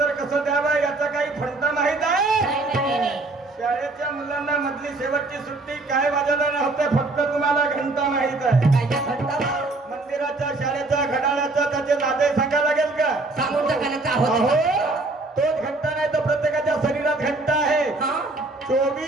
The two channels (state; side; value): quieter; left; 3.1 dB